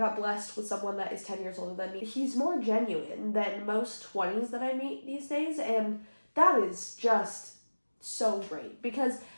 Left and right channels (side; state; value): both; inverted; correlation -1.00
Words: blessed with someone that is 10 years older than me. He's more genuine than most 20s that I meet these days, and that is just so great, because